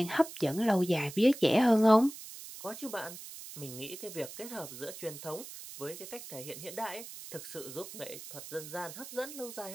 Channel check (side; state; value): right; noise; hiss, 12 dB below the sound